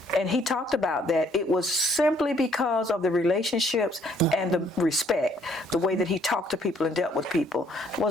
And he talked about that it was simply because of the relationships and the respect, the way that he talked to people and dealt with people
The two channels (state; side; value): normal; both; correlation 0.64